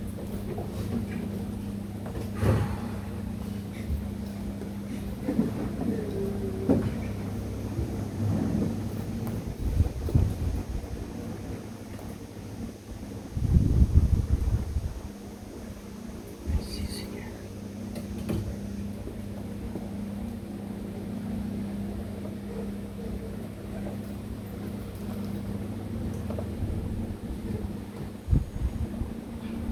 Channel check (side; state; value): both; identical; correlation 1.00